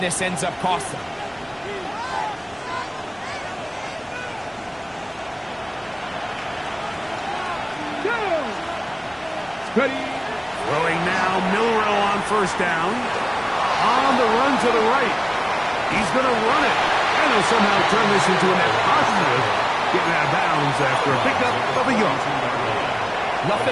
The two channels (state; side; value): identical; both; correlation 1.00